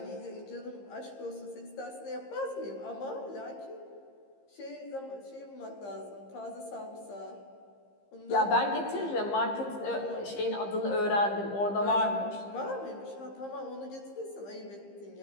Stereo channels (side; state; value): right; late; 15 ms